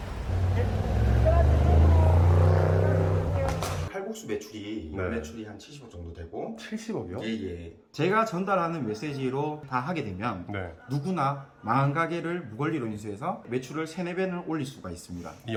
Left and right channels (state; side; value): identical; both; correlation 1.00